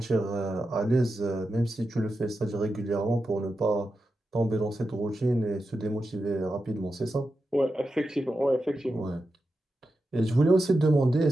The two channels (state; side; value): normal; both; correlation 0.90